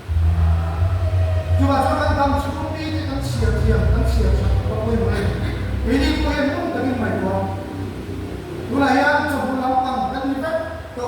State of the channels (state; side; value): identical; both; correlation 1.00